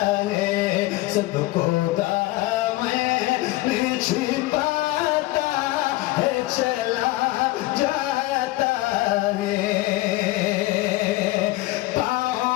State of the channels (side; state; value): right; quieter; 18.6 dB